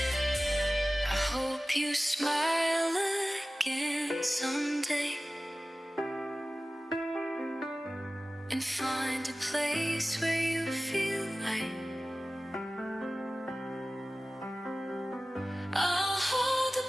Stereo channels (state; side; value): normal; both; correlation 0.96